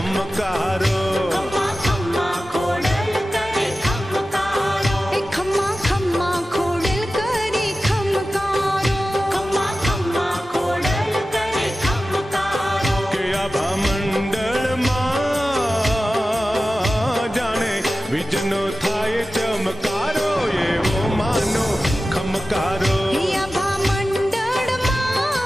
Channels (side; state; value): both; normal; correlation 0.95